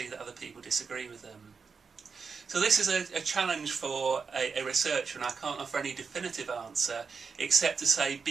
that other people disagree with them? So this is a challenge for a researcher, and I can't offer any definitive answer except to say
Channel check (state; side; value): quieter; left; 5.4 dB